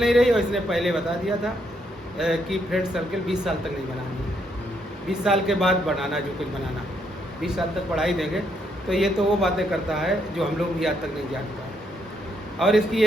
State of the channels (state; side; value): normal; both; correlation 0.75